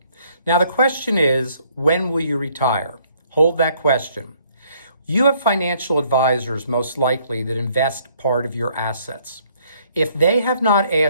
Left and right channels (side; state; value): both; inverted; correlation -0.65